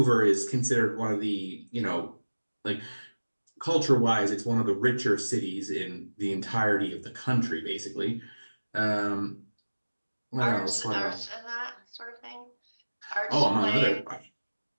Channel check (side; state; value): both; inverted; correlation -1.00